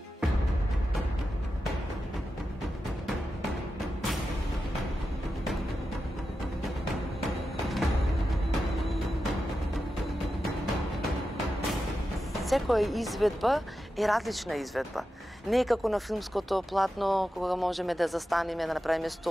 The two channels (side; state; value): both; normal; correlation 0.90